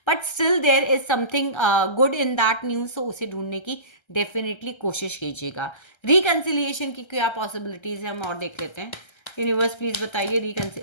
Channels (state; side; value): late; right; 1.3 ms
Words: But still there is something good in that news, तो उसे ढूंढने की डेफिनेटली कोशिश कीजिएगा। रिकन्सिलिएशन की क्या पॉसिबिलिटीज़ है, हम और देख लेते हैं। यूनिवर्स प्लीज बताइए reconcile,